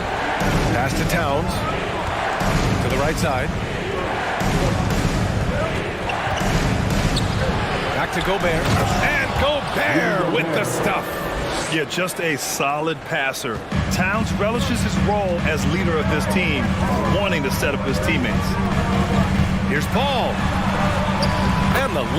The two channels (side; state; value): both; identical; correlation 1.00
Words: Pass to Towns. To the right side. Back to Gobert. And Gobert with the stuff. Yeah, just a solid passer. Towns relishes his role as leader of this team, wanting to set up his teammates. Here's Paul. And the